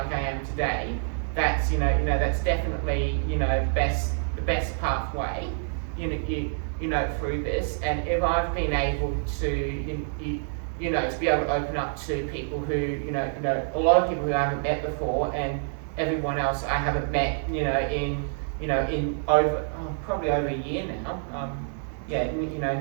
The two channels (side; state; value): left; silent; digital silence